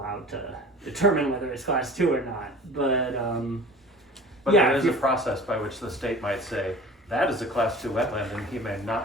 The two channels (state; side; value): normal; both; correlation 0.41